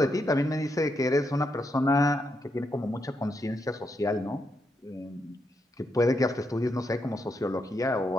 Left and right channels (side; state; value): both; normal; correlation 0.81